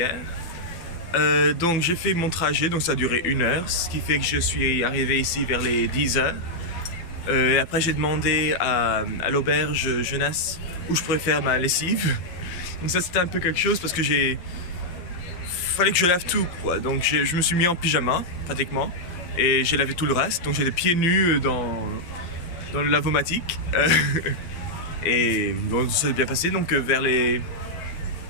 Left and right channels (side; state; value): right; late; 12 ms